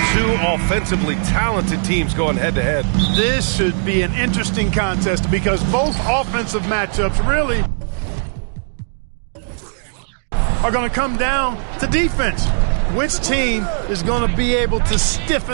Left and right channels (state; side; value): silent; left; digital silence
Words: Two offensively talented teams going head-to-head. This should be an interesting contest because both offensive matchups really are going to come down to defense. Which team is going to be able to